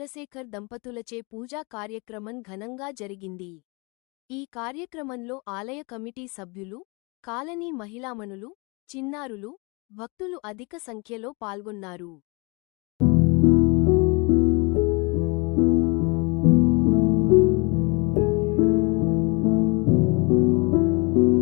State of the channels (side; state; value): right; quieter; 29.8 dB